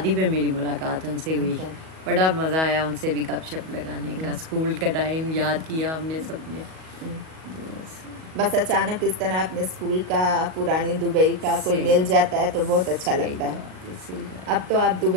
पे मेरी मुलाकात उनसे हुई। बड़ा मज़ा आया उनसे भी गपशप लगाने का, स्कूल का टाइम याद किया हमने सबने। बस अचानक इस तरह अपने स्कूल का, पुरानी दुबई का कोई मिल जाता है तो बहुत अच्छा लगता है। अब तो आप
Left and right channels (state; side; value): late; left; 37 ms